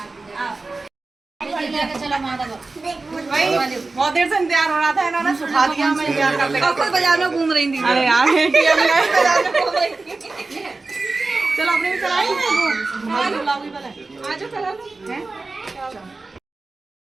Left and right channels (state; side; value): quieter; left; 3.6 dB